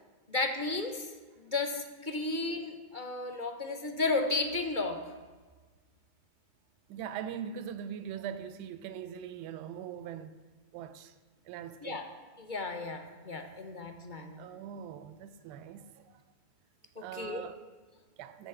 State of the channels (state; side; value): late; left; 2.3 ms